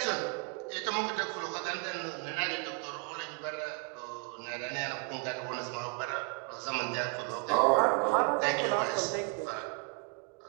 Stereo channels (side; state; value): left; quieter; 32.6 dB